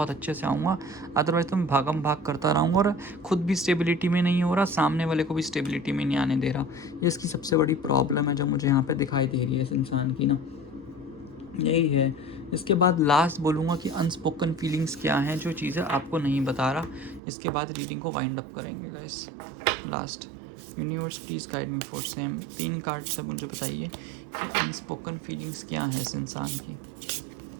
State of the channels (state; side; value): drops out; left; at 17.2 s